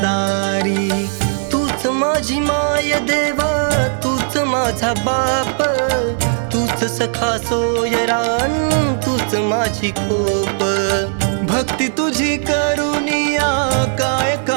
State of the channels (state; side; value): silent; left; digital silence